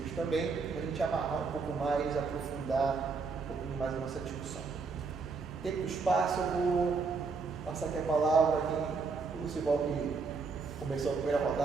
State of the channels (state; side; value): quieter; left; 4.7 dB